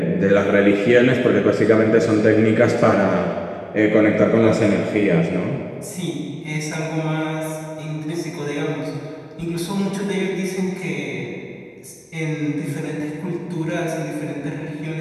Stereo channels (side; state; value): both; identical; correlation 1.00